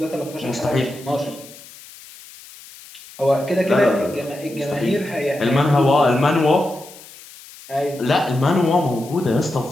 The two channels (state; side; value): noise; left; hiss, 19 dB below the sound